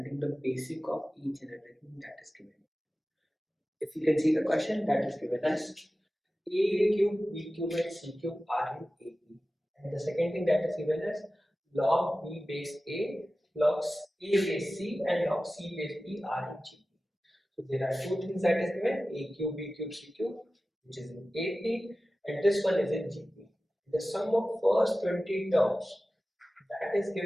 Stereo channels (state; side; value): normal; both; correlation 0.95